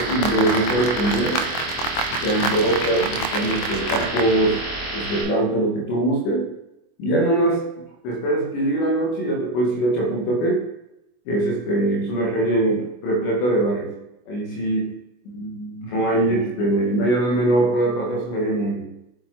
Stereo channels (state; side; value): late; right; 24 ms